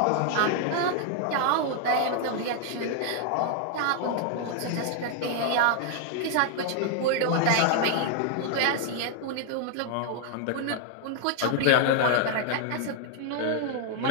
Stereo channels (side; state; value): both; different; correlation 0.00